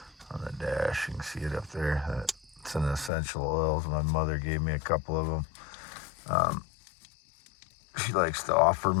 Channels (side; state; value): right; drops out; at 3.1 s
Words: on the dash. You can see it up there. It's an essential oils. My mother gave me a couple of them. She likes to offer